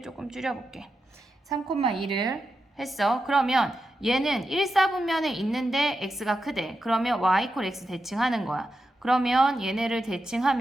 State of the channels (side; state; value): both; normal; correlation 0.88